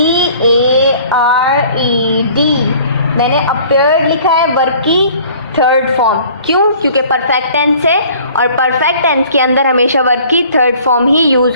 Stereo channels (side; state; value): both; inverted; correlation -0.52